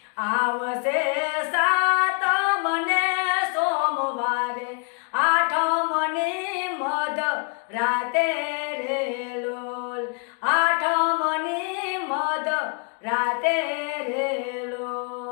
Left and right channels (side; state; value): right; quieter; 37.0 dB